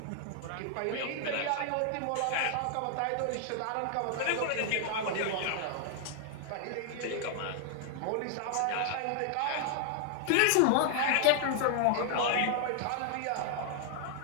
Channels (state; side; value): different; both; correlation 0.00